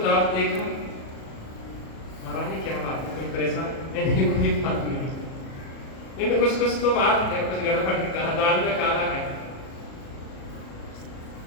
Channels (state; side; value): late; right; 37 ms